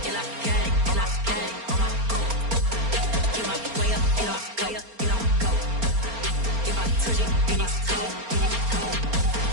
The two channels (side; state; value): left; late; 4.3 ms